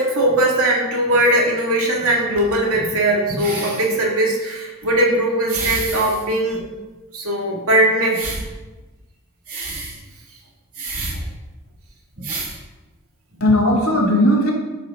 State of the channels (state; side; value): normal; both; correlation 0.09